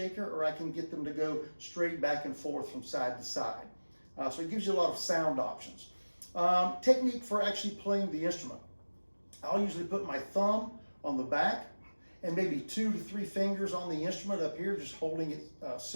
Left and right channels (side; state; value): both; inverted; correlation -1.00